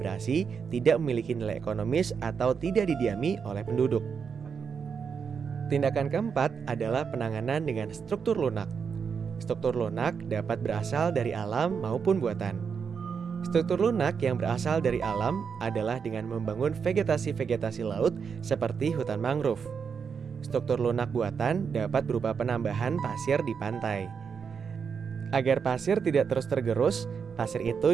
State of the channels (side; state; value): left; quieter; 6.3 dB